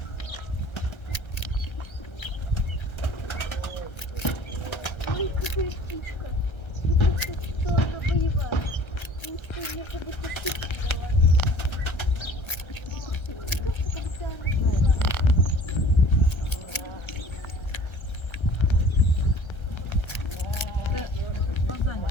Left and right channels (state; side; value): late; right; 1.3 ms